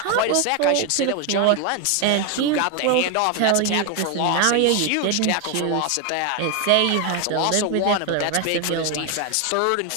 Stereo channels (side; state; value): both; different; correlation 0.01